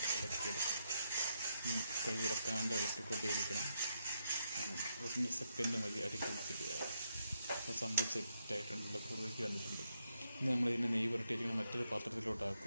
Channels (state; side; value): inverted; both; correlation -0.80